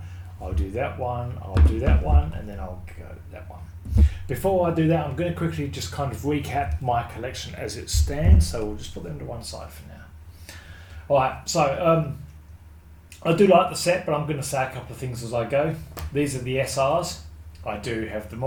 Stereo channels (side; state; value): both; identical; correlation 1.00